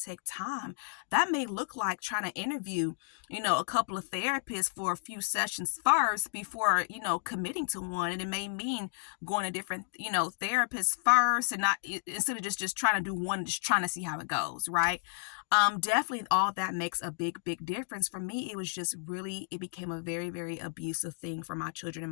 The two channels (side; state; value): right; silent; digital silence